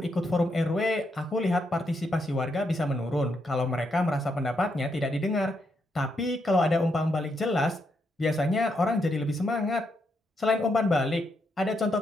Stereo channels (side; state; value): both; normal; correlation 0.79